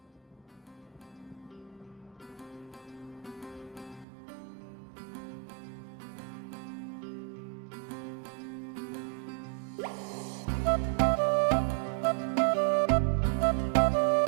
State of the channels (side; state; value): left; drops out; at 4.0 s